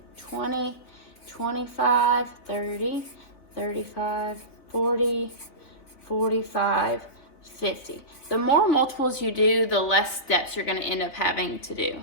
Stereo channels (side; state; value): right; late; 3.6 ms